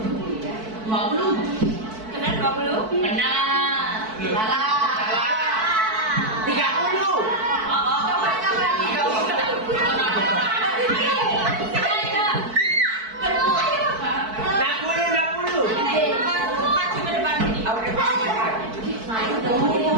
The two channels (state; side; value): late; left; 4.5 ms